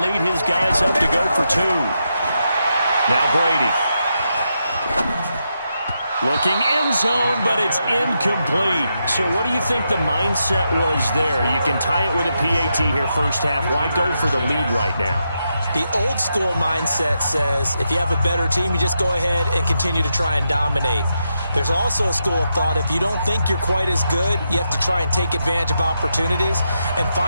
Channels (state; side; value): inverted; both; correlation -0.84